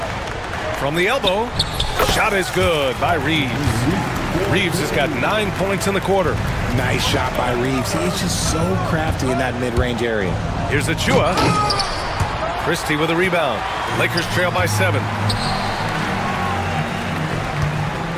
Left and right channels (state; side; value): identical; both; correlation 1.00